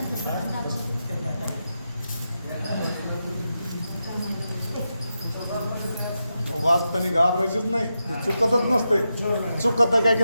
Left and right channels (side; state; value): both; inverted; correlation -0.88